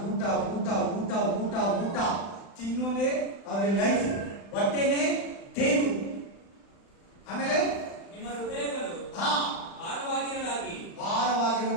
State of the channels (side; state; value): right; late; 35 ms